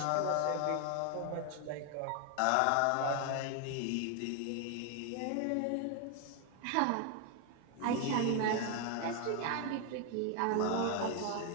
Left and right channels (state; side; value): different; both; correlation 0.01